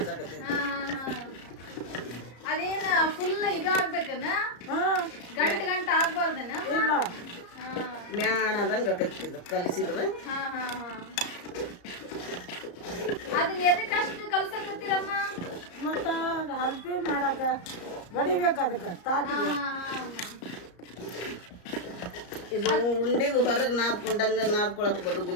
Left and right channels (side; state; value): right; late; 34 ms